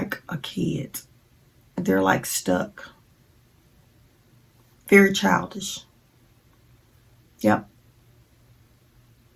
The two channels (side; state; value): both; identical; correlation 1.00